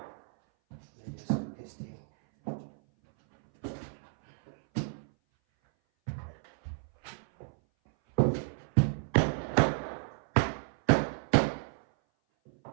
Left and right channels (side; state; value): left; silent; 57 dB below the other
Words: and then just put this thing. I'm